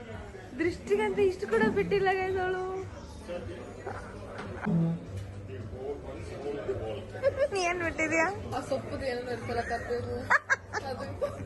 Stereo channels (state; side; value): identical; both; correlation 1.00